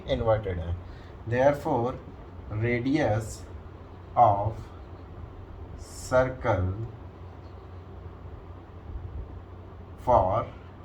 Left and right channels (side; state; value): both; identical; correlation 1.00